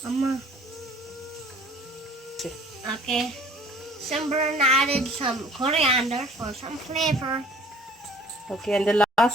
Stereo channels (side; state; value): both; normal; correlation 0.51